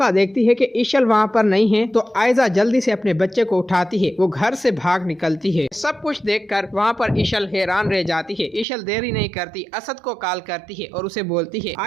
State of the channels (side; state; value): left; drops out; at 8.7 s